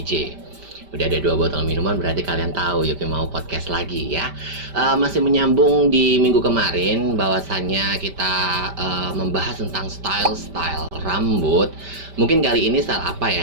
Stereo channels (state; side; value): late; left; 5.1 ms